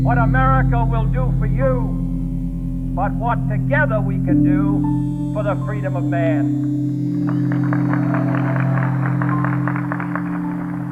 what America will do for you, but what together we can do for the freedom of man.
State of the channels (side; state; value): both; identical; correlation 1.00